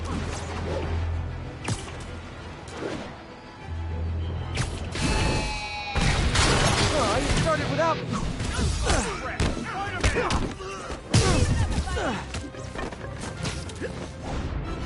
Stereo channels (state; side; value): identical; both; correlation 1.00